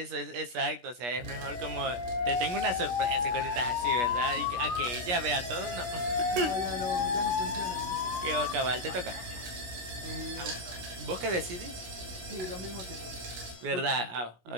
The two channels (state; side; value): late; left; 17 ms